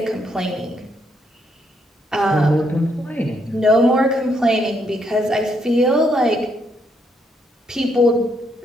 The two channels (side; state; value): both; normal; correlation 0.74